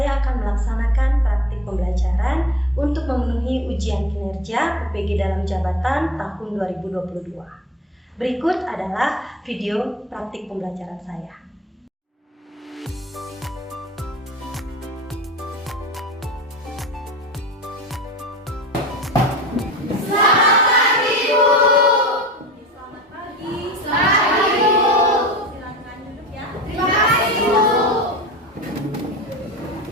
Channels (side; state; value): both; normal; correlation 0.35